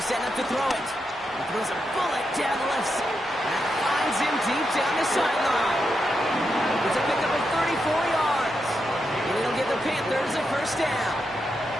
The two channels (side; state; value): both; normal; correlation 0.85